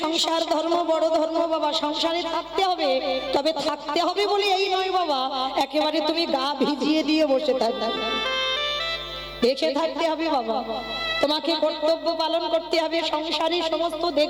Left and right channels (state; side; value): identical; both; correlation 1.00